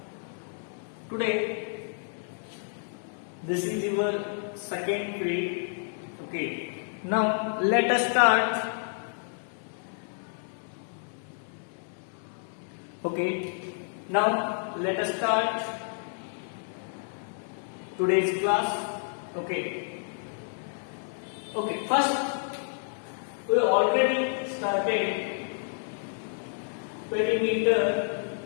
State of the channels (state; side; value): silent; right; digital silence